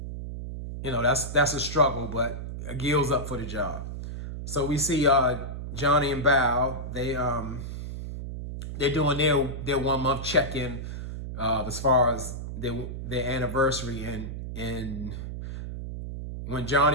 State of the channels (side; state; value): right; noise; hum, 7 dB below the sound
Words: that's a struggle, but Gil's up for the job. So we see Johnny and Bao, they're doing their 1 month check-in, as far as their anniversary, and when